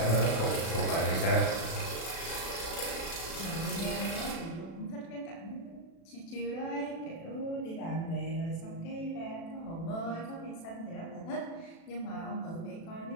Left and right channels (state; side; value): late; right; 36 ms